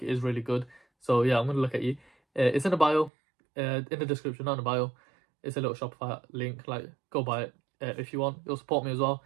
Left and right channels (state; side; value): drops out; left; at 3.1 s